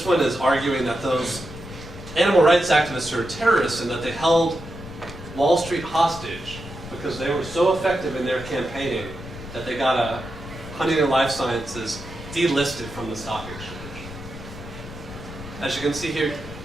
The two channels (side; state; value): left; noise; rumble, 13 dB below the sound